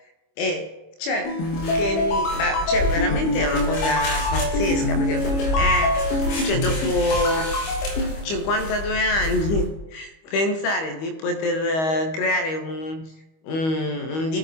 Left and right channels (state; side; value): late; right; 25 ms